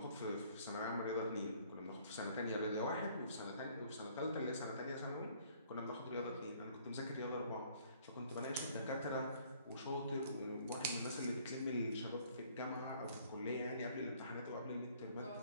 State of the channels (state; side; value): inverted; both; correlation -0.59